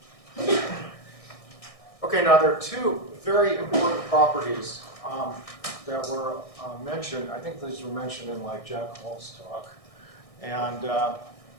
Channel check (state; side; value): late; right; 1.6 ms